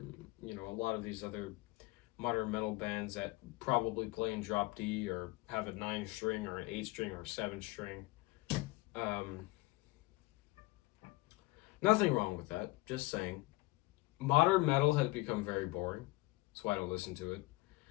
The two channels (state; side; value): quieter; right; 21.2 dB